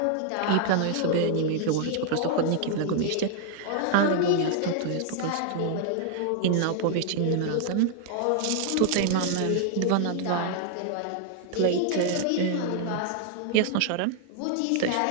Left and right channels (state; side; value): different; both; correlation 0.00